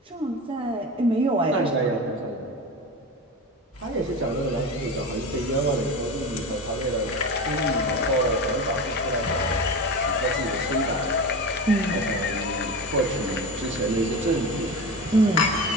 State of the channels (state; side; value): normal; both; correlation 0.26